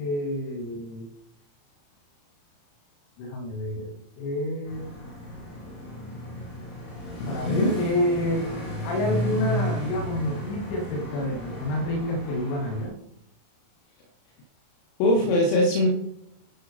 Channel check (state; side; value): late; right; 35 ms